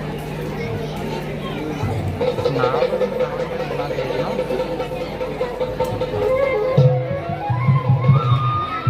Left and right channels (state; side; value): identical; both; correlation 1.00